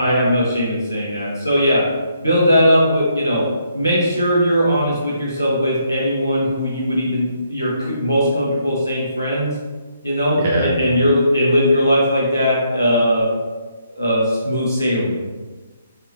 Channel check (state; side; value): inverted; both; correlation -0.74